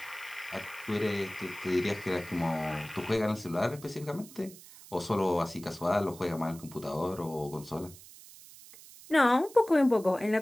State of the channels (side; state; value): right; noise; hiss, 19 dB below the sound